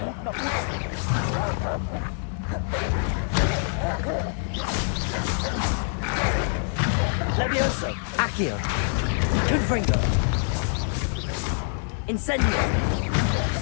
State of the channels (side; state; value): right; silent; 61 dB below the other